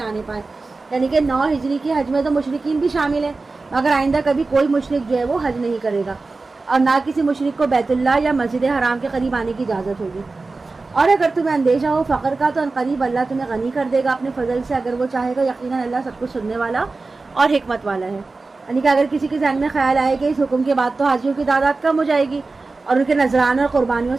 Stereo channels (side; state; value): left; quieter; 3.7 dB